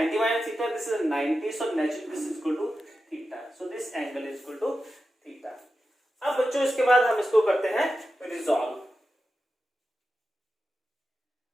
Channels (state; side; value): normal; both; correlation 0.91